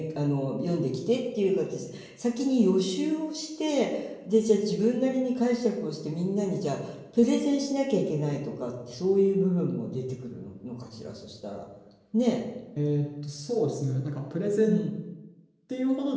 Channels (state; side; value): identical; both; correlation 1.00